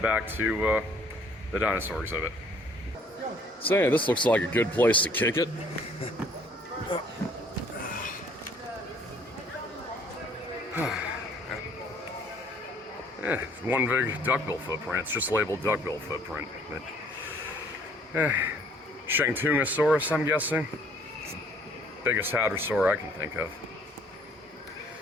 back to the dinosaur exhibit. So yeah, this looks like a good place to kick it. Yeah, one big duckbill footprint. It's just labeled duckbill footprint. But, Shantungosaurus, I'm guessing. It's the biggest hadrosaur I can think of.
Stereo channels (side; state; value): both; normal; correlation 0.59